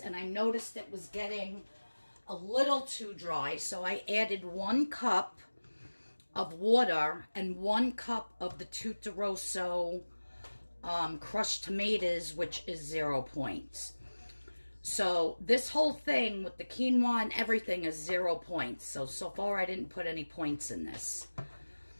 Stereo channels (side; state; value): both; inverted; correlation -1.00